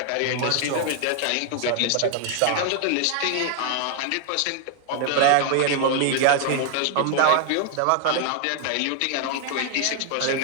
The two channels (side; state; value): both; different; correlation 0.00